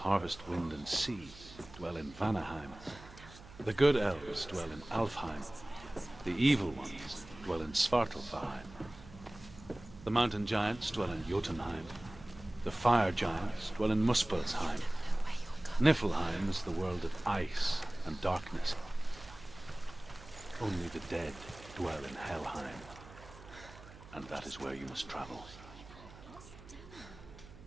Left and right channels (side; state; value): right; noise; hum, 18 dB below the sound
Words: wind, and sea dwell in Vanaheim. The good elves dwell in Alfheim. The evil ones dwell in Svartalfheim. The mountain giants dwell in Jotunheim. The fire giants dwell in Muspelheim. Niflheim is the world of ice and darkness. Only the dead dwell in Helheim. And that is where you must travel.